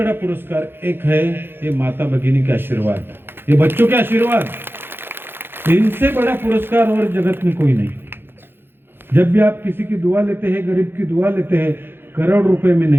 पुरस्कार एक है, ये माता भगिनी के आशीर्वाद, ये बच्चों के आशीर्वाद. इनसे बड़ा पुरस्कार और जगत में कोई नहीं. जब भी आप किसी की दुआ लेते हैं, गरीब की दुआ लेते हैं, करोड़ रुपए में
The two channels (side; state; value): left; late; 0.10 ms